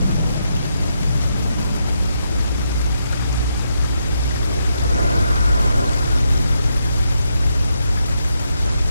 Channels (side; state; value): both; inverted; correlation -0.80